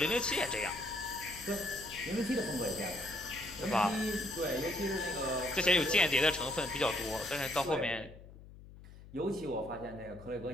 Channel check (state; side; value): noise; left; hum, 18 dB below the sound